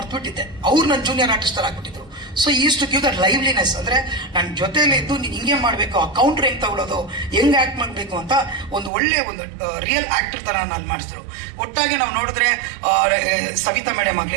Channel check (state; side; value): drops out; left; at 8.9 s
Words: ಅವ್ರು ನನ್ನ ಜೂನಿಯರ್ ಆರ್ಟಿಸ್ಟರ್ ಆಗಿಬಿಟ್ಟಿದ್ರು. So is to give that liveliness. ಅಂದರೆ ನನ್ನ ಜೊತೆಯಲ್ಲಿ ಇದ್ದು ನೀನು ಹಿಂಗೆ ಮಾಡಬೇಕು, ಆ ಕೌಂಟ್ರ್ ಹೆಂಗೆ ತಗೊಳ್ಳೋದು, ಹೆಂಗೆ ಆ್ಯಕ್ಟ್ ಮಾಡಬೇಕು ಅಂತ ಒಂದು ಒಳ್ಳೆ ಒಂದು ರಿಯಲ್ ಆ್ಯಕ್ಟರ್ ಥರ ನಾನು ಮಾಡಿಸಿದ್ರು. ಒಟ್ಟಾಗಿ ನಾವು ನೋಡಿದ್ರೆ ಸವಿತಾ ಮೇಡಮ್